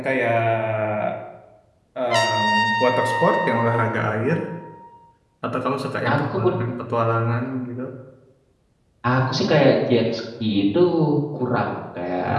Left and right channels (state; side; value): identical; both; correlation 1.00